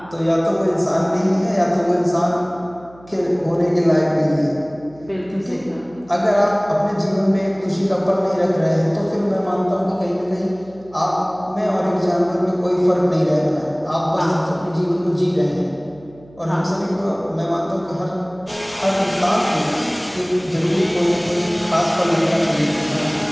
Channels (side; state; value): right; noise; hum, 24 dB below the sound